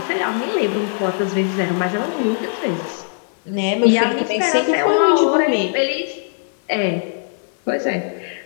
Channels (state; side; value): silent; right; 66 dB below the other